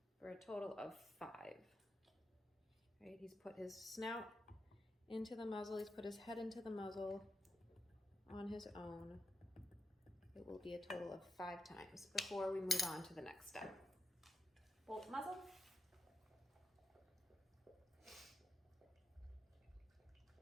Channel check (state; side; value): normal; both; correlation 0.82